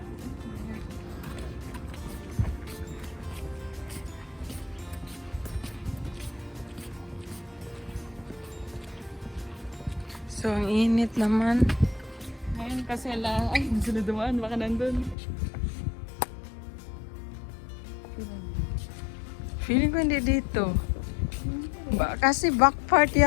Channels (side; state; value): right; drops out; at 15.2 s